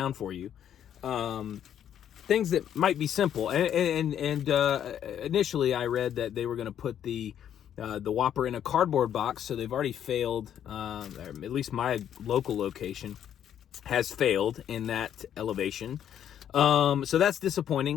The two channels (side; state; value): right; quieter; 9.8 dB